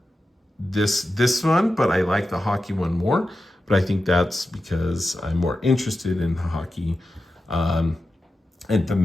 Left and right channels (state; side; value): normal; both; correlation 0.91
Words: this one, but I like the hockey one more. But I think that's because I'm more interested in hockey. And